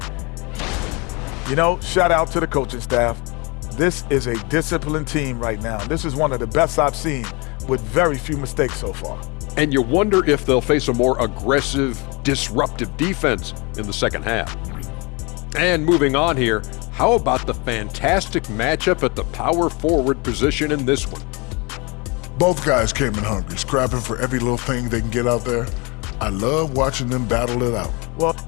You know, shout out to the coaching staff. This is a disciplined team right now. This is one of the best I've seen with very few mistakes so far. And you wonder if they'll face a more aggressive, disruptive defense in the second half. And moving on here, how about the fantastic matchup at the power forward position in this one? Both guys came in hungry, scrapping for every little thing they can get out there. I love watching them battle it out. Well,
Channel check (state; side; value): quieter; right; 28.6 dB